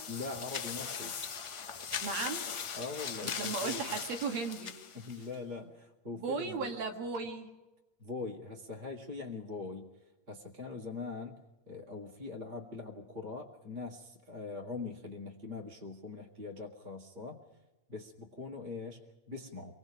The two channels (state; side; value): late; left; 8.5 ms